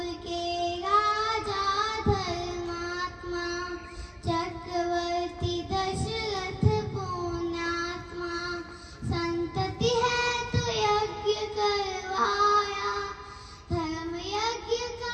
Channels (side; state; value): both; identical; correlation 1.00